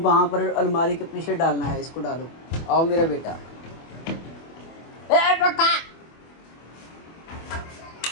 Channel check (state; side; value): late; right; 24 ms